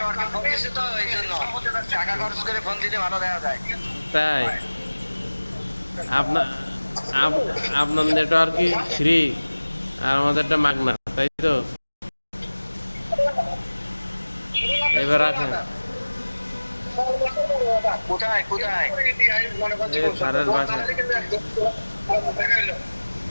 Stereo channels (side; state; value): both; inverted; correlation -1.00